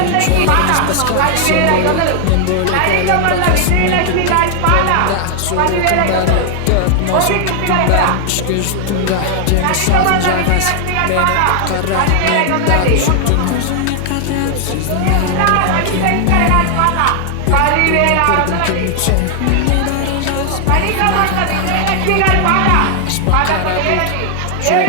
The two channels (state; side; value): different; both; correlation 0.00